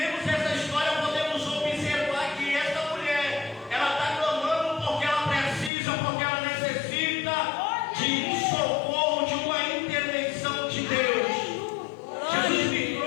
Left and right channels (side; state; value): right; drops out; at 5.7 s